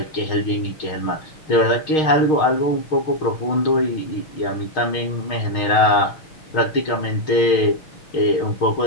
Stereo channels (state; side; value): late; right; 6.4 ms